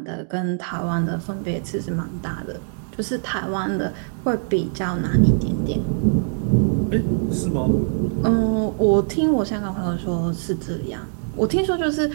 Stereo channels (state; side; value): silent; left; digital silence